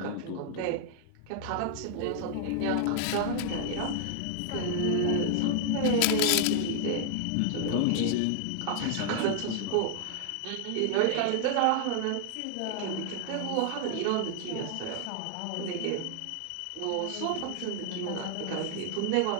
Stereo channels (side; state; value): both; different; correlation 0.00